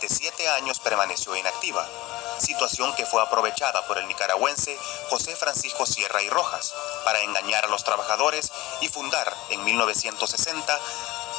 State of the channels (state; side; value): quieter; right; 19.3 dB